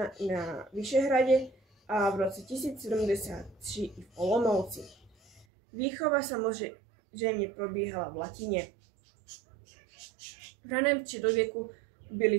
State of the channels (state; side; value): drops out; left; at 5.5 s